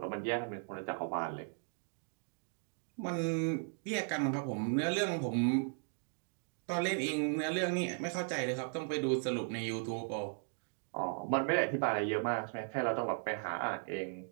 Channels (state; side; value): silent; left; 53 dB below the other